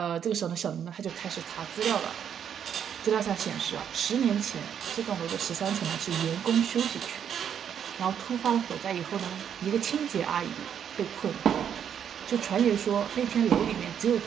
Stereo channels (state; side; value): quieter; left; 8.6 dB